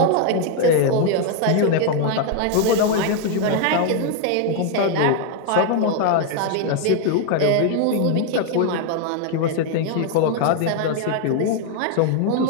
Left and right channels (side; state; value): both; different; correlation 0.00